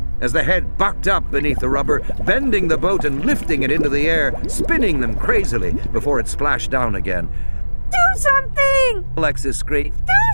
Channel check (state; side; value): inverted; both; correlation -1.00